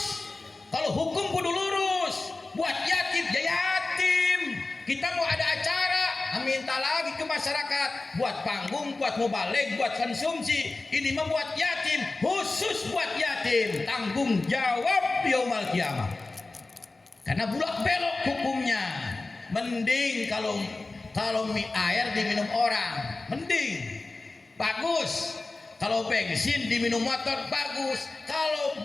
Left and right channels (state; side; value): quieter; right; 3.3 dB